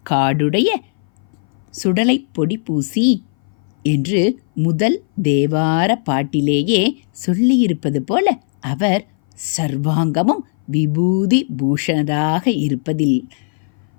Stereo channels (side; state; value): right; silent; 61 dB below the other